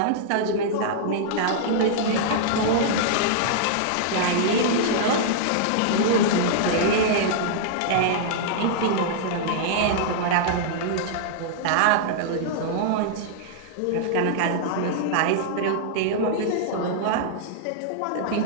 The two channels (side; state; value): both; different; correlation -0.02